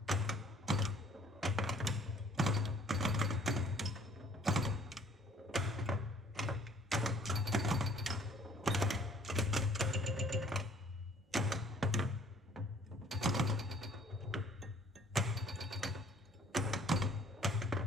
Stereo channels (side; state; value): both; normal; correlation 0.57